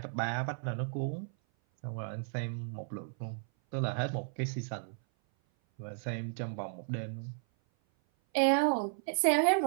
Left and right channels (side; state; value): left; silent; 55 dB below the other